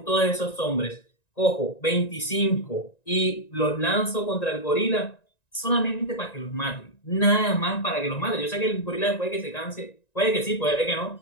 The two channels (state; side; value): late; right; 1.9 ms